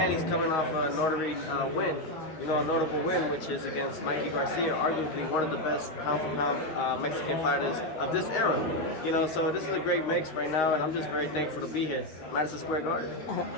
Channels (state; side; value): late; right; 13 ms